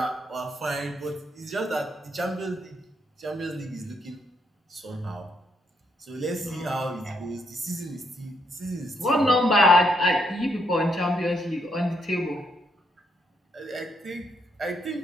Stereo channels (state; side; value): normal; both; correlation 0.76